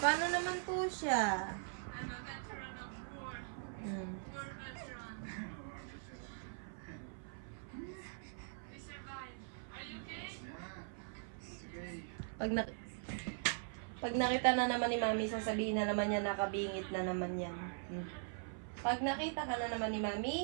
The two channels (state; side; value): silent; left; 50 dB below the other